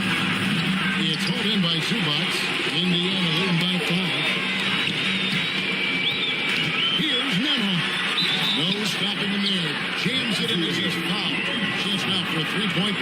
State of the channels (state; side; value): identical; both; correlation 1.00